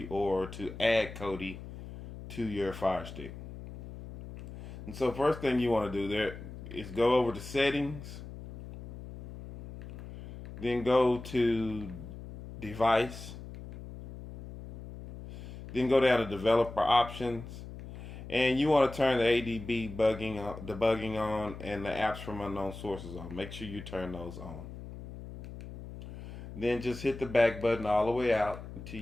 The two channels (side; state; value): left; noise; hum, 12 dB below the sound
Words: or to add Kodi to your Fire Stick. And so first thing you want to do there is go over to settings, then go to device, then go down to developer options, and you want to turn the ADB debugging on and the apps from unknown sources on. Make sure you turn those on. Then just hit the back button all the way out until